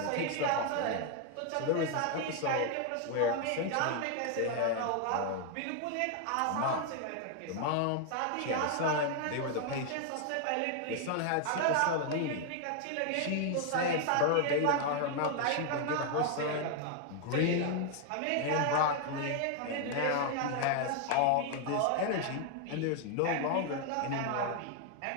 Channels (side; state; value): both; different; correlation 0.00